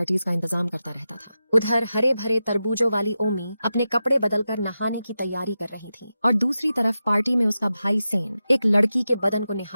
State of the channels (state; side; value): inverted; both; correlation -0.91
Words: का इंतजाम करता रहता था। उधर हरे भरे तरबूजों वाली ओमी अपने कपड़े बदलकर नहाने की तैयारी कर रही थी और दूसरी तरफ पार्टी में उसका भाई सेन एक लड़की के बदन को